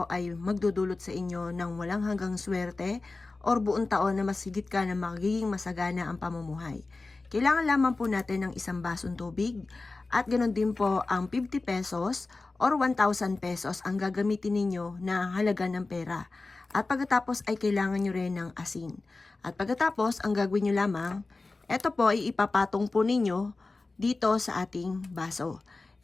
ay magdudulot sa inyo ng walang hanggang swerte or buong taon na masigit ka na magiging masagana ang pamumuhay. Kailangan lamang po natin ng isang basong tubig at ganoon din po ang 50 pesos or 1,000 pesos ang gagamitin ninyo na halaga ng pera. At pagkatapos ay kailangan nyo rin ng asin. At pagkatapos, ang gagawin nyo lamang, ito po ay ipapatong po ninyo dito sa ating baso.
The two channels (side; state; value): right; quieter; 3.5 dB